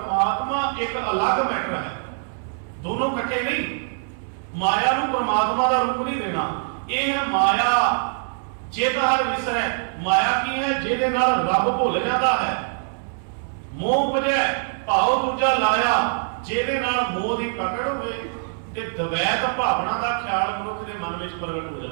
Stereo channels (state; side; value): silent; left; digital silence